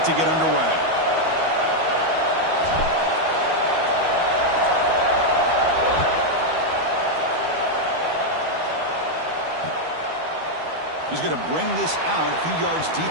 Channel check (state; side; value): late; left; 12 ms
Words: to get underway. He's going to bring this out a few yards